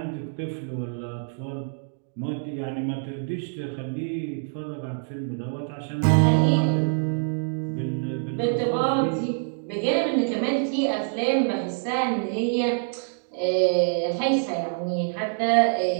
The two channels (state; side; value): silent; left; digital silence